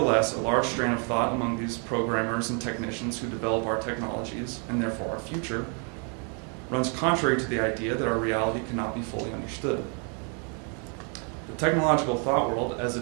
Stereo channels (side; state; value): left; quieter; 38.8 dB